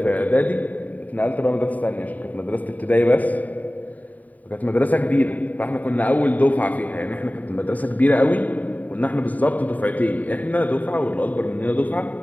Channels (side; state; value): right; late; 0.074 ms